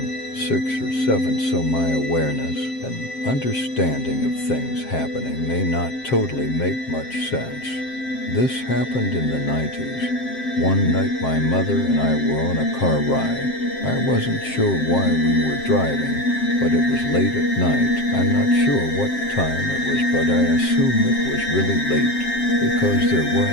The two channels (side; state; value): right; late; 7.6 ms